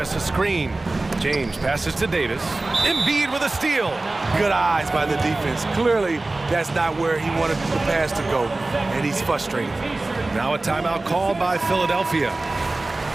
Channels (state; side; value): quieter; left; 3.0 dB